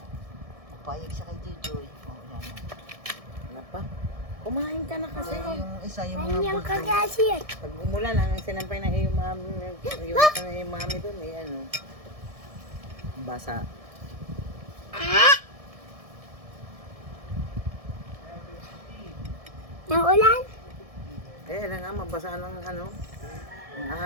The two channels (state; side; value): late; left; 1.7 ms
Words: Papayag siya kay Jojoy. Oh, yan. Ano pa? Kumain ka na kasi. Yung isa yung mga Kanyang bulldog. kagasir. Pag umulan, ang sinampay ng iyong mami, yung mami doon, eh, ano, basa. Nang ulan? Eh, alam nga, mabasa ng ano, ng